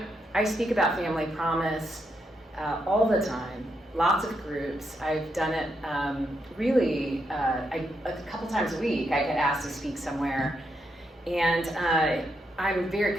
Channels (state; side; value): normal; both; correlation 0.80